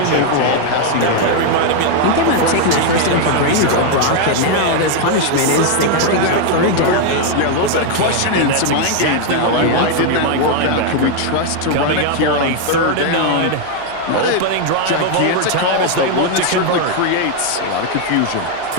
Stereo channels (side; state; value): both; different; correlation 0.01